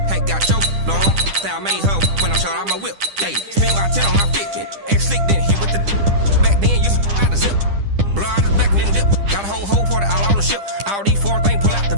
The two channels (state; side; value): late; left; 10 ms